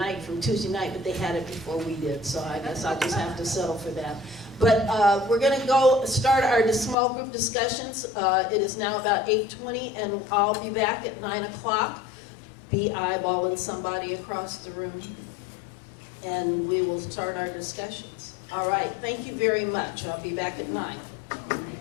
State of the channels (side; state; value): right; drops out; at 7.0 s